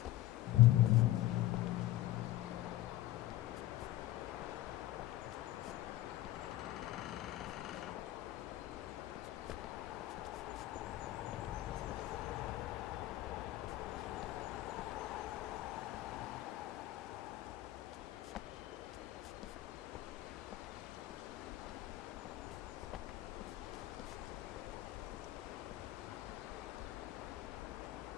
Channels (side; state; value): right; quieter; 15.5 dB